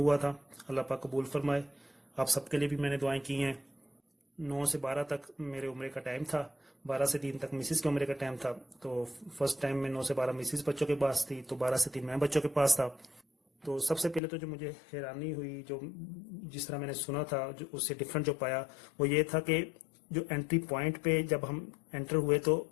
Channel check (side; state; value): right; drops out; at 14.2 s